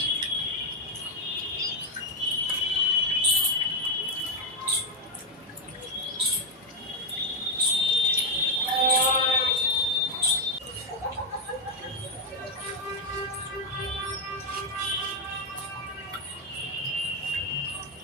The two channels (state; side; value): normal; both; correlation 0.04